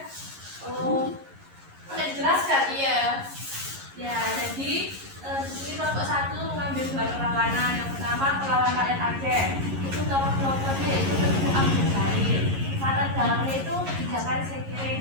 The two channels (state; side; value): late; left; 11 ms